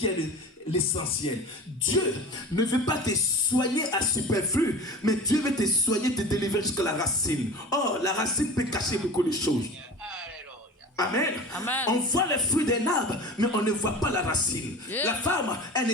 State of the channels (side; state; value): both; normal; correlation 0.36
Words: est l'essentiel. Dieu ne veut pas te soigner à superflu, mais Dieu veut te soigner, te délivrer jusqu'à la racine. Oh, la racine peut cacher beaucoup de choses. Amen. Amen. On voit les fruits d'un arbre, mais on ne voit pas la racine. Yeah. La femme, elle